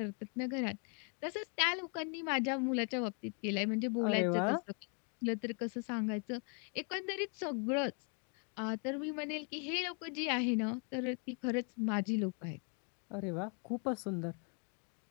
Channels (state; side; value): quieter; right; 39.7 dB